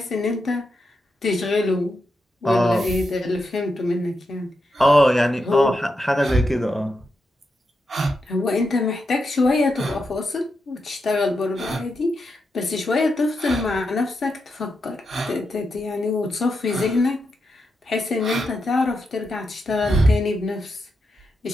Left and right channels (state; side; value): normal; both; correlation 0.86